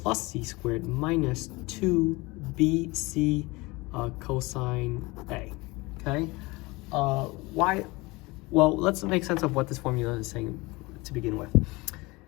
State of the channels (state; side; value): quieter; right; 23.4 dB